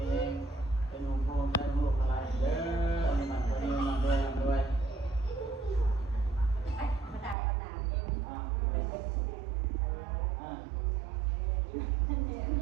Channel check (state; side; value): drops out; left; at 7.4 s